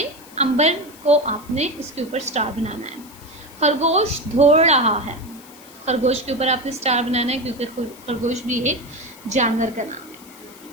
अंबर को आपने इसके ऊपर स्टार बनाना है। खरगोश दौड़ रहा है, खरगोश के ऊपर आपने स्टार बनाना है, क्योंकि खरगोश भी एक जानवर का नाम है।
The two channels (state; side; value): noise; left; hiss, 21 dB below the sound